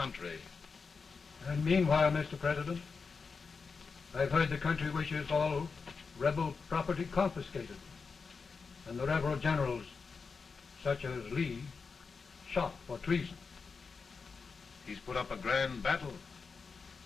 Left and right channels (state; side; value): quieter; right; 5.0 dB